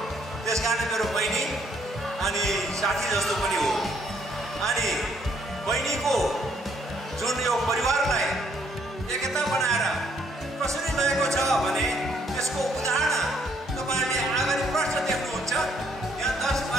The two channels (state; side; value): normal; both; correlation 0.68